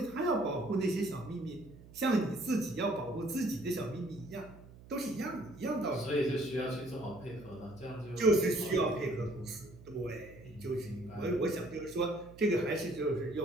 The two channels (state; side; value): noise; right; hum, 19 dB below the sound